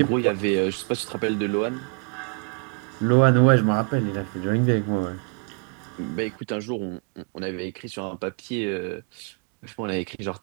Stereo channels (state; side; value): quieter; left; 36.7 dB